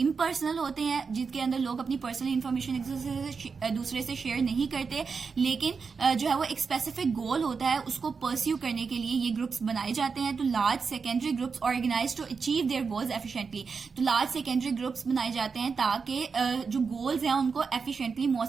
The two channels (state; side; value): quieter; left; 5.2 dB